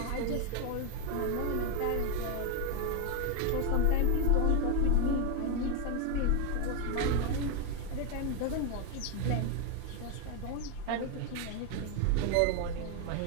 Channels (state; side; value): different; both; correlation 0.01